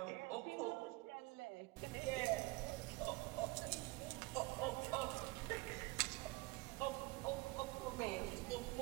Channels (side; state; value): left; quieter; 23.1 dB